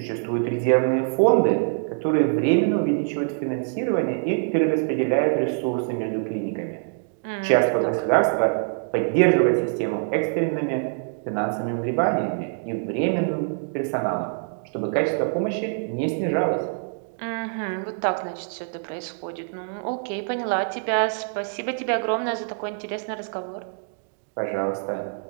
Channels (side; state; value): left; silent; digital silence